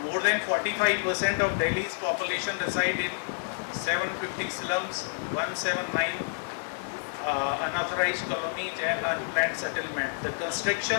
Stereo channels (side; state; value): right; silent; 59 dB below the other